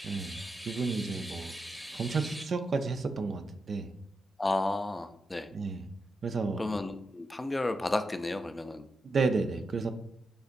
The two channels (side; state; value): both; normal; correlation 0.86